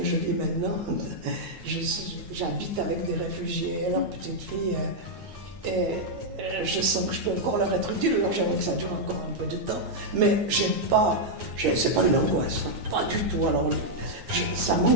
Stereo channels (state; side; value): late; left; 9.2 ms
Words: je vis maintenant. J'habite avec des réfugiés et leurs petites filles. Et je sens que je peux encore leur être utile, alors j'aimerais que ça dure encore un peu de temps. Mais c'est pas une angoisse, hein, pas du tout. Alors, ça